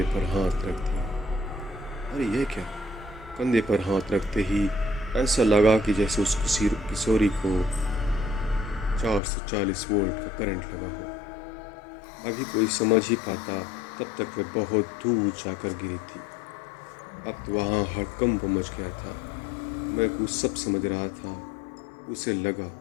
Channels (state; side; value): drops out; right; at 9.2 s